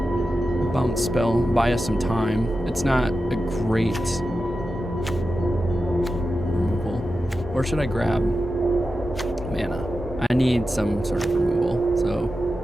bounce spell. Buy us some time. It's not a great removal. Or should I grab mana? I need some sort of removal, so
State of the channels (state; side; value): normal; both; correlation 0.91